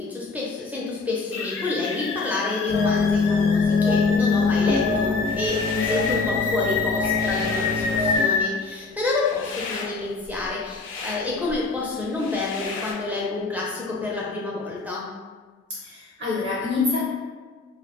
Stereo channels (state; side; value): quieter; right; 3.8 dB